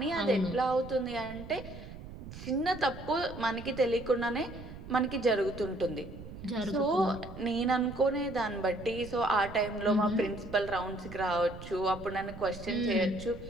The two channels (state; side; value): noise; right; rumble, 13 dB below the sound